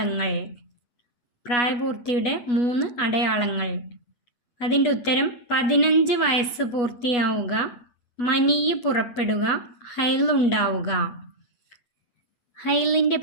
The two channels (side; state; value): right; late; 8.2 ms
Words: പ്രായപൂർത്തിയുടെ 3 അടയാളങ്ങൾ. അതിൻ്റെ ഉത്തരം 15 വയസ്സ് പൂർത്തിയാവുക, മനിയ് പുറപ്പെടുക, ഹൈലുണ്ടാവുക. ഹൈലിൻ്റെ